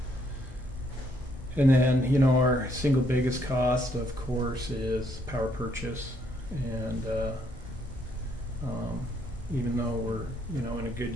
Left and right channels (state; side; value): normal; both; correlation 0.70